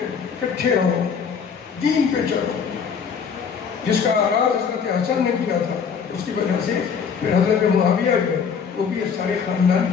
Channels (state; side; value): quieter; right; 6.4 dB